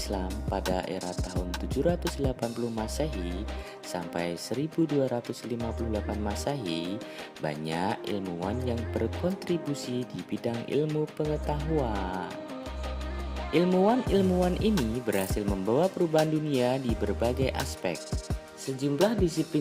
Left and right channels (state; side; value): identical; both; correlation 1.00